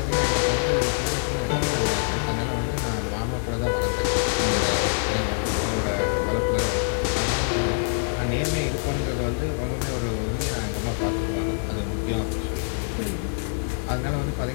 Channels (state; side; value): silent; right; 58 dB below the other